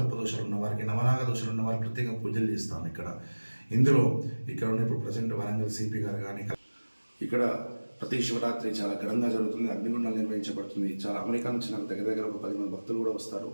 దోషాలు ఉన్న వారికి, నవనాగ దోషాలు ఉన్న వారికి ప్రత్యేకంగా పూజలు చేస్తాం ఇక్కడ. ఇక్కడ ఉన్న ఇప్పుడు ప్రజెంట్ వరంగల్ సిపి గారు కానీ ఇక్కడ ప్రతి శివరాత్రి చాలా ఘనంగా జరుగుతుంది. అగ్నిగుండాలు నిర్వహించబడుతుంది. చాలా అమెరికా నుంచి నాకు దగ్గర ఒక 10 మంది భక్తులు కూడా వస్తారు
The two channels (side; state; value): both; inverted; correlation -1.00